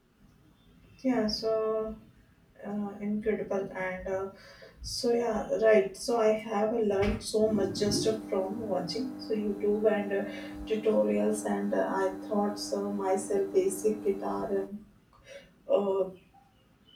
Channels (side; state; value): both; identical; correlation 1.00